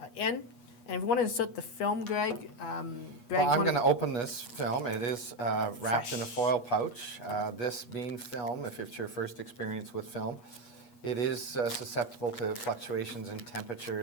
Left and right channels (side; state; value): right; late; 8.3 ms